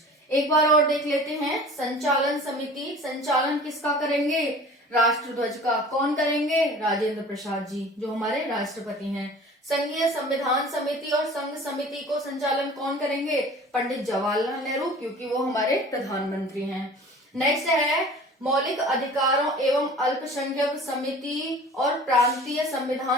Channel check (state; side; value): normal; both; correlation 0.43